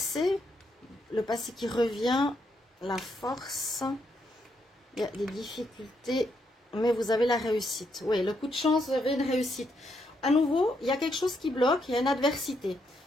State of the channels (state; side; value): normal; both; correlation 0.78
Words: Le passé qui revient. La force. Il y a des difficultés. Mais vous avez la réussite. Oui, le coup de chance, vous avez une réussite. À nouveau, il y a quelque chose qui bloque, il y a une adversité.